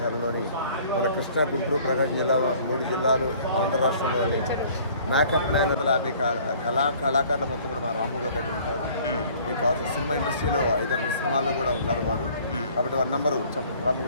మన కృష్ణా, గుంటూరు, ప్రకాశం జిల్లా 3 జిల్లాలు ఆంధ్ర రాష్ట్రంలోని మేకప్ మ్యాన్ 50 కళాకారుల మొత్తం కూడా మా రాము గారు దగ్గర ఉంటారు. మీకు కావాల్సిన సినిమా ఇండస్ట్రీలో 5-6 సినిమాల్లో కూడా ఉన్నారు వారు. కాబట్టి వారి నెంబరు చెప్పండి రాము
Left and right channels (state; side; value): inverted; both; correlation -0.54